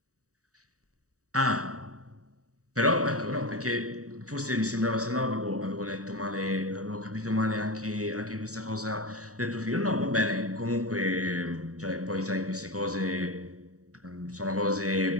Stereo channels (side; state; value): left; late; 0.66 ms